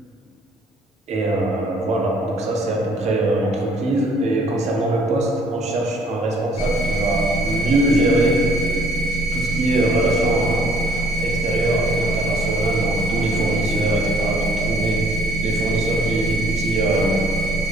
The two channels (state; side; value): normal; both; correlation 0.62